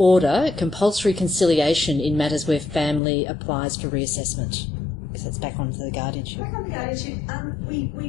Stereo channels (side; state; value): right; drops out; at 3.0 s